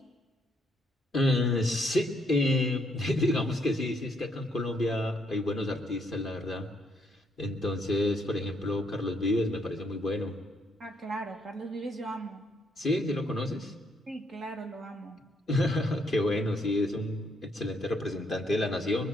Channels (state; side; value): normal; both; correlation 0.72